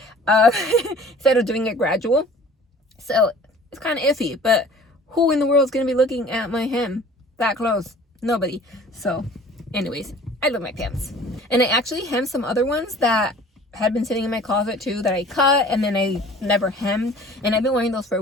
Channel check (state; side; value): normal; both; correlation 0.47